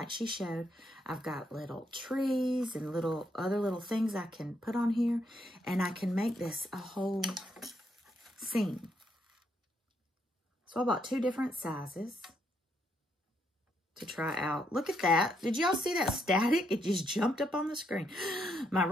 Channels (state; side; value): normal; both; correlation 0.76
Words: she showed, I've got little trees and other little things I can put on here, and I can make this a whole scene. So I bought 2 different sizes to try out. Look at that. Did y'all see that static? It just jumped up on the screen. My